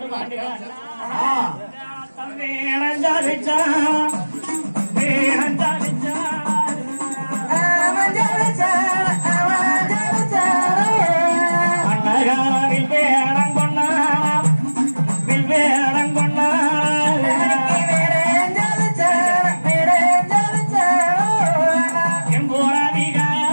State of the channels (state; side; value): inverted; both; correlation -1.00